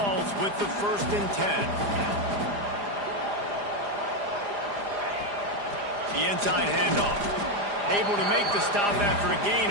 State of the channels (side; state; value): left; late; 4.9 ms